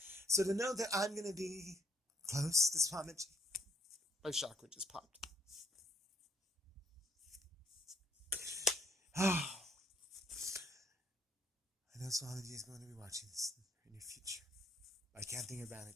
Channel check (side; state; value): both; normal; correlation 0.65